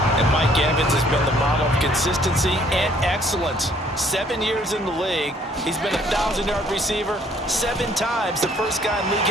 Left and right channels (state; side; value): normal; both; correlation 0.62